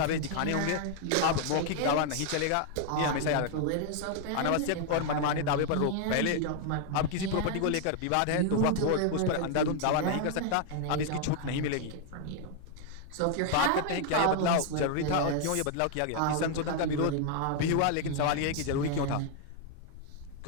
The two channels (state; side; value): different; both; correlation 0.00